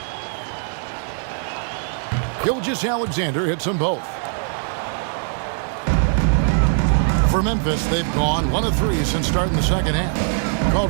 Gilgeous-Alexander hits them both. For Memphis, they've gone 1 of 3 since starting the second half.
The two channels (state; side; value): silent; left; 57 dB below the other